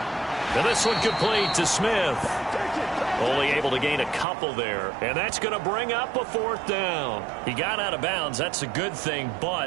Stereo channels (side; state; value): left; drops out; at 4.2 s